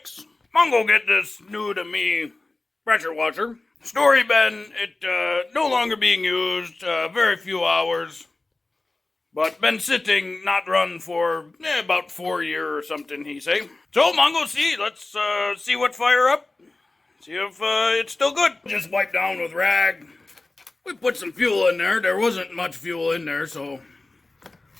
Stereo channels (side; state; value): right; quieter; 3.2 dB